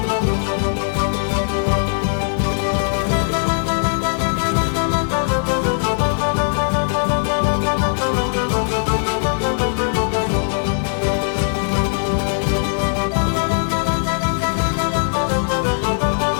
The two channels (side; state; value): right; silent; digital silence